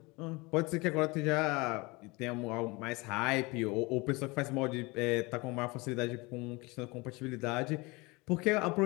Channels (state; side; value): quieter; right; 25.0 dB